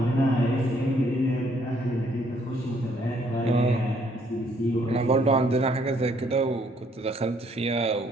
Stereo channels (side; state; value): both; normal; correlation 0.66